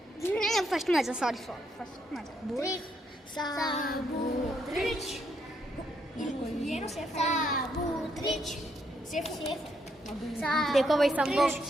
ಫಸ್ಟ್ ಮಜಾ ಸಾರಿ ಫಸ್ಟ್ ಮಜಾ ಸಾಬೂತ್ರಿಚ್ ಏನು ಸೇಫ್ ಸಾಬೂತ್ರಿಚ್ ಸೇಫ್ ಸೇಫ್ देखो भाई संभव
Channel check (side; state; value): both; normal; correlation 0.75